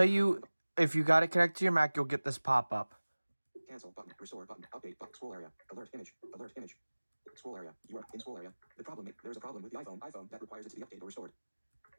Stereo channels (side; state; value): both; inverted; correlation -1.00